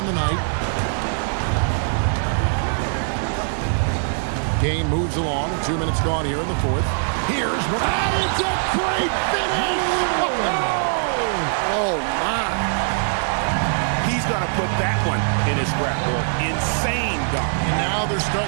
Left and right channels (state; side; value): silent; left; digital silence